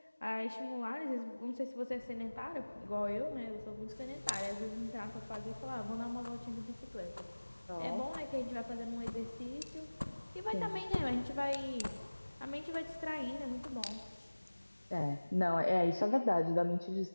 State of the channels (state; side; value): inverted; both; correlation -1.00